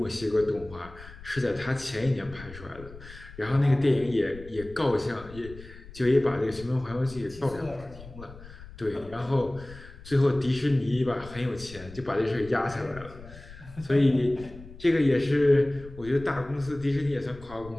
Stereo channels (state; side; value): noise; left; rumble, 17 dB below the sound